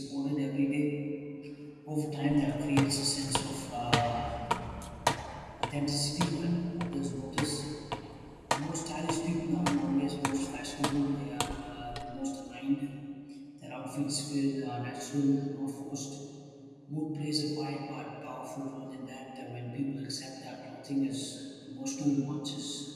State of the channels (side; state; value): both; identical; correlation 1.00